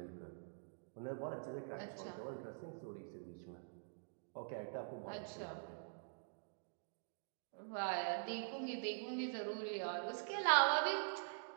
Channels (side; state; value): left; silent; digital silence